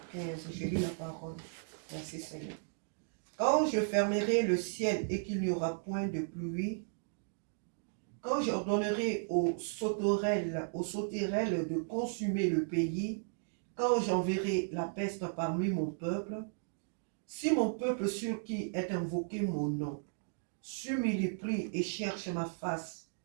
15. Je lis la parole. Merci Seigneur. Quand je fermerai le ciel et qu'il n'y aura point de pluie, quand j'ordonnerai aux sauterelles de consumer le pays, quand j'enverrai la peste parmi mon peuple, si mon peuple sur qui est invoqué mon nom, s'humilie et cherche ma face,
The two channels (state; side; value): silent; left; digital silence